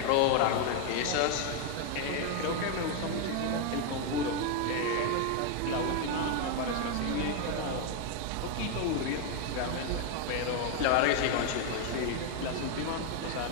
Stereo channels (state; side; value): different; both; correlation 0.01